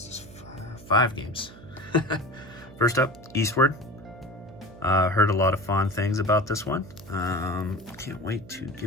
5 games. First up, Eastward. Heard a lot of fond things about this one. Can't wait to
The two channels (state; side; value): noise; right; hum, 19 dB below the sound